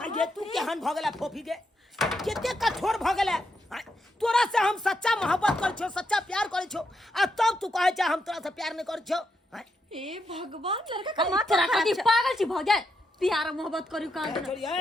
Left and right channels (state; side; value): normal; both; correlation 0.81